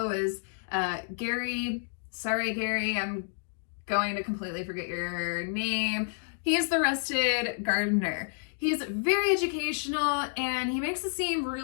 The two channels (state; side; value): silent; right; digital silence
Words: is Gary. Sorry, Gary, I'm going to completely forget your name. He's the Rested Gardener. He's very educational and he makes it seem